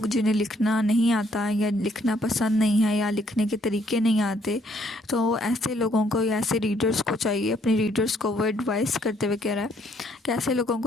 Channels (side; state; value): both; normal; correlation 0.67